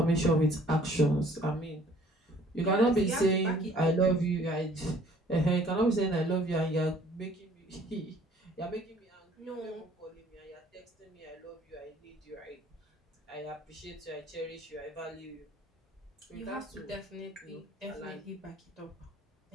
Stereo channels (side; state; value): both; normal; correlation 0.56